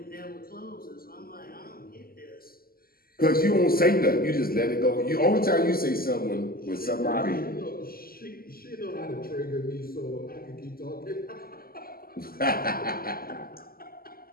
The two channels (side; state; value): right; late; 0.43 ms